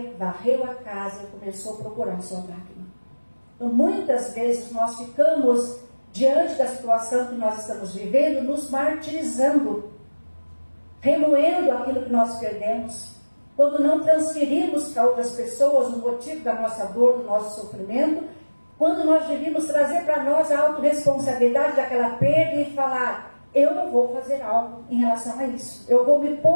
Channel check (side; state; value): both; inverted; correlation -1.00